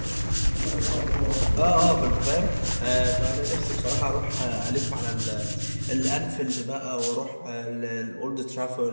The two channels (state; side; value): inverted; both; correlation -1.00